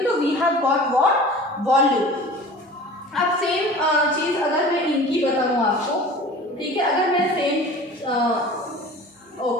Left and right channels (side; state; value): both; normal; correlation 0.41